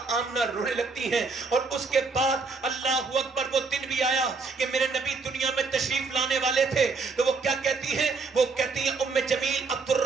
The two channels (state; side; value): quieter; left; 4.3 dB